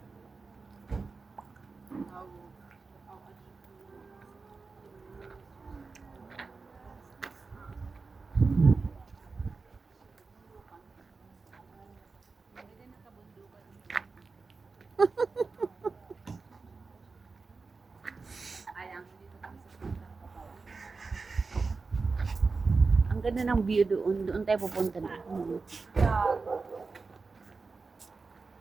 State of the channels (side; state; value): left; quieter; 4.2 dB